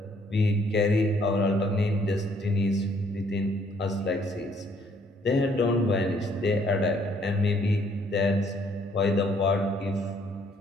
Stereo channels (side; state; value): both; normal; correlation 0.65